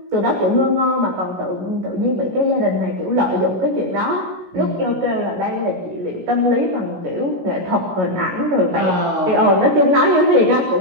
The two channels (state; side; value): late; left; 16 ms